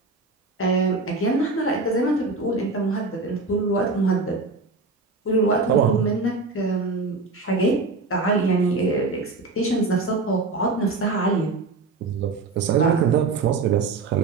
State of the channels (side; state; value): left; quieter; 3.8 dB